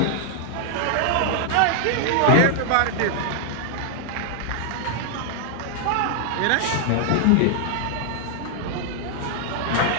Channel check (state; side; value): different; both; correlation -0.01